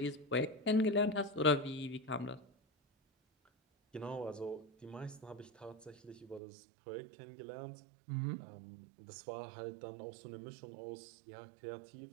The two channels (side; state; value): left; drops out; at 6.4 s